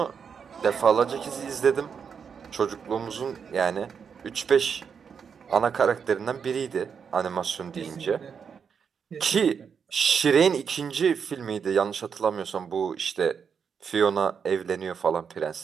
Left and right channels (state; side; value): quieter; left; 6.7 dB